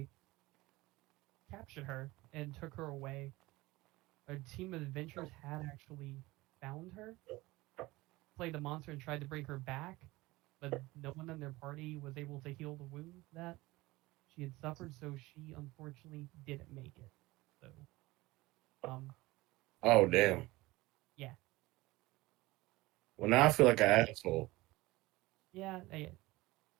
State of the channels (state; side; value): quieter; left; 20.2 dB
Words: captured her and took her away. A team of adventurers had actually found her, played the monster, and tried to bring her back, but no one in their party was able to heal the wound that she had suffered, so she unfortunately didn't make it. So, Oh damn. yeah. Well, now I feel like an asshole. Yeah, a